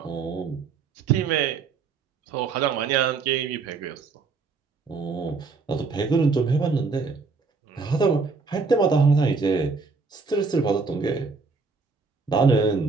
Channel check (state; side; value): quieter; left; 4.6 dB